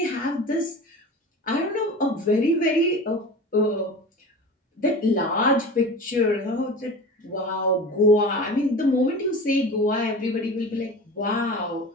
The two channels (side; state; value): both; normal; correlation 0.34